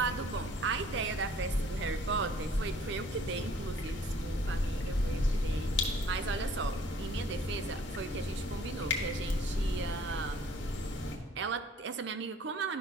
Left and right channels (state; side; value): normal; both; correlation 0.55